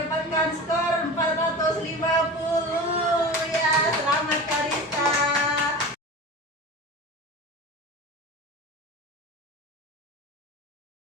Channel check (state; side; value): normal; both; correlation 0.32